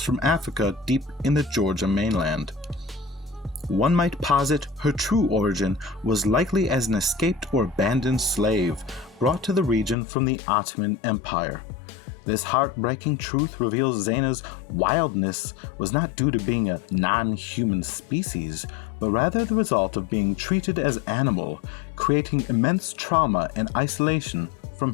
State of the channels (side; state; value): right; drops out; at 10.0 s